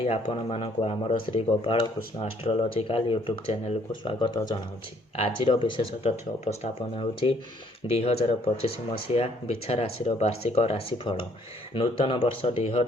ଆପଣମାନଙ୍କୁ ଆମର ଶ୍ରୀ ଗୋପାଳ କୃଷ୍ଣ ଆଷ୍ଟ୍ରୋଲୋଜିକାଲ ୟୁଟ୍ୟୁବ୍ ଚ୍ୟାନେଲକୁ ସ୍ୱାଗତ ଜଣାଉଛି। ଆଜିର ବିଶେଷ ତଥ୍ୟ ଉପସ୍ଥାପନ ହେଉଛି 2025 ମସିହା ବିଛା ରାଶିର ବାର୍ଷିକ ରାଶିଫଳ। ନୂତନ ବର୍ଷ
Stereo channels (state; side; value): normal; both; correlation 0.64